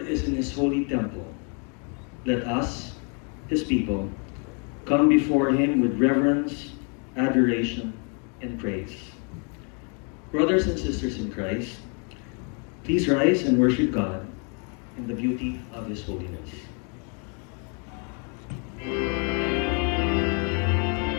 is in His holy temple. Let us, His people, come before Him with reverence, adoration, and praise. Brothers and sisters in Christ, please rise and worship God in the beauty of His holiness.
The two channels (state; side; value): quieter; right; 38.3 dB